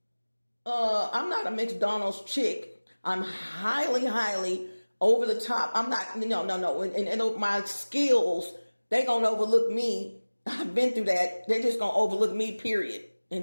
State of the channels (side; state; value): both; inverted; correlation -1.00